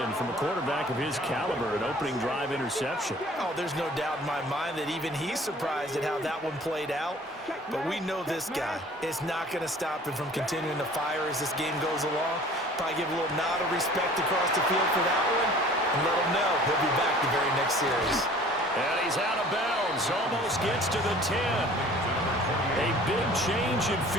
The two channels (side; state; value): both; normal; correlation 0.49